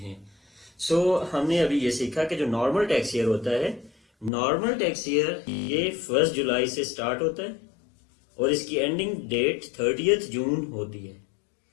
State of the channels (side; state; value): right; drops out; at 4.3 s